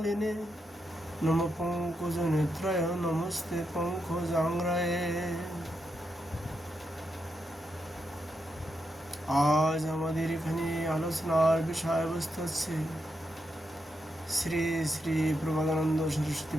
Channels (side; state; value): both; normal; correlation 0.84